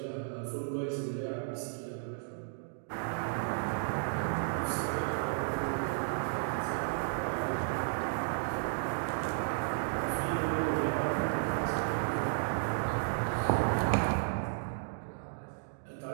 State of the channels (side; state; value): left; silent; digital silence